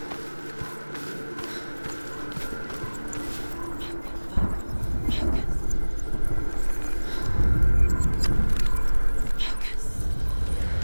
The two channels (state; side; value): inverted; both; correlation -1.00